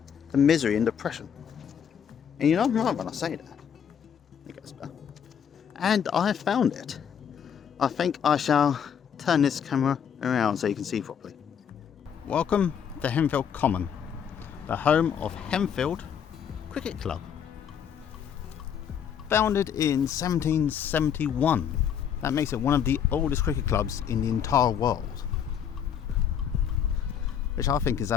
to misery and depression. And I'm right when I say that. It gets better. And I have found it. I think I shall turn this camera around so you can see properly. Welcome to Henfield Common, the home of Henfield Cricket Club. Founded in 1771. That makes it one of the oldest cricket clubs in the entire world. Which I think is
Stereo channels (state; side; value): quieter; right; 8.2 dB